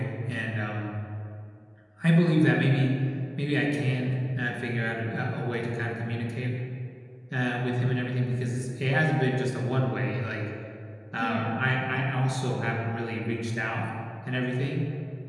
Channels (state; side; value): identical; both; correlation 1.00